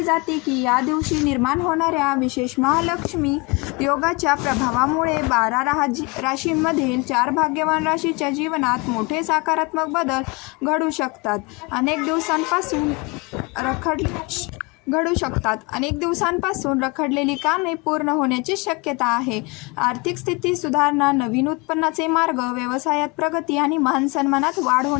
जाते की या दिवशी निर्माण होणाऱ्या विशेष महालक्ष्मी योगाच्या प्रभावामुळे 12 राशींमधील 4 भाग्यवान राशीच्या जीवनात मोठे सकारात्मक बदल घडू शकतात. अनेक दिवसांपासून रखडलेली कामे पूर्ण होण्याची शक्यता आहे. आर्थिक स्थिती सुधारणा, नवीन उत्पन्नाचे मार्ग, व्यवसायात प्रगती आणि मान सन्मानात वाढ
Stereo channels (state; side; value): quieter; right; 27.6 dB